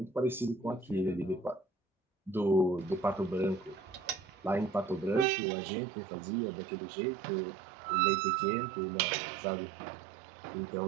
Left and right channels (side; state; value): left; drops out; at 5.2 s